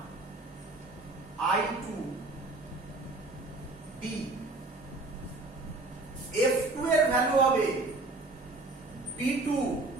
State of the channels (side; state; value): left; quieter; 3.1 dB